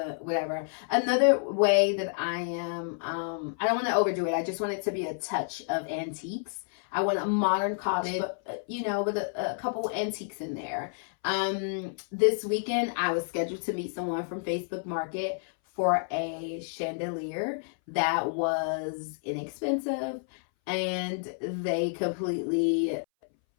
whatever. Another way that I am, I don't want to overdo it. I just want it to be a touch of antiques. I want a modern cottage, but, you know, with a couple antiques in there. This weekend, I was scheduled to meet someone from Facebook Market for a chandelier that was inexpensive, and they completely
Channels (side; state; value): right; silent; 58 dB below the other